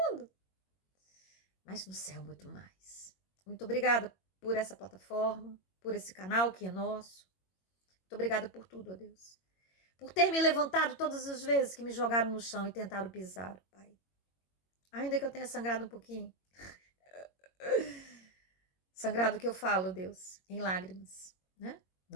mas no céu muito mais. Muito obrigada por essa plataforma, por esse canal que é nosso. Muito obrigada por tudo, ó Deus. Por ter me levantado todas as vezes que me jogaram no chão e tentaram pisar, Pai. Ainda que eu tenha sangrado um pouquinho. Sangrado que eu falo, Deus, em lágrimas, né?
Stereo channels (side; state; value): right; late; 21 ms